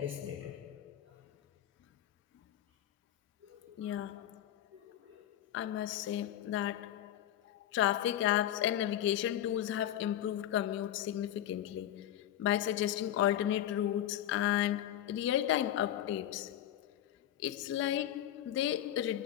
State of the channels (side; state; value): right; quieter; 11.8 dB